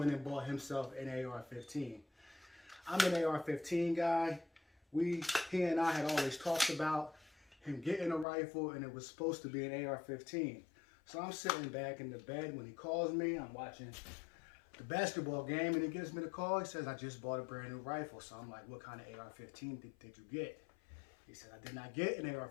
and bought himself an AR-15. I'm an AR-15 guy. He and I had always talked about him getting a rifle, and it was supposed to be an AR-15. So I'm sitting back in the bed when he calls me. I'm watching the basketball game, and he gives me the call. He says, I just bought a brand new rifle. So I'm like, what kind of AR-15 did you get? He said, I did not get an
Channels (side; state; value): right; drops out; at 8.2 s